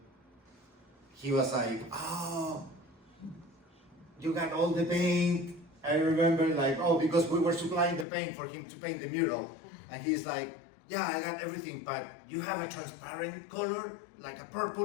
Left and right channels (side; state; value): right; drops out; at 8.1 s